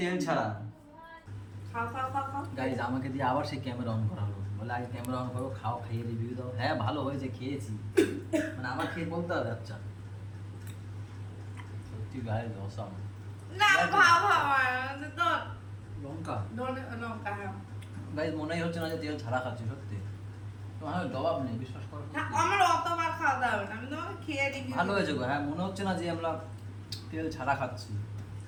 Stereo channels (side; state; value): both; identical; correlation 1.00